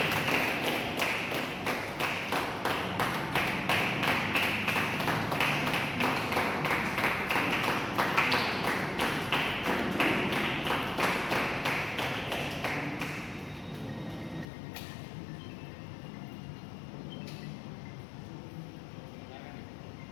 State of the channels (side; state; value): right; drops out; at 14.5 s